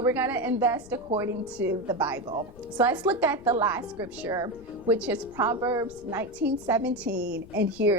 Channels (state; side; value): noise; left; rumble, 20 dB below the sound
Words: we're going to invest according to the Bible. So let's look at the last scripture, which is Proverbs 19:17, and